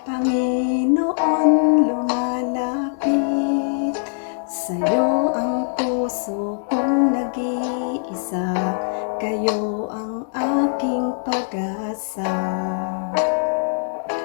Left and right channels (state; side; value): silent; right; 64 dB below the other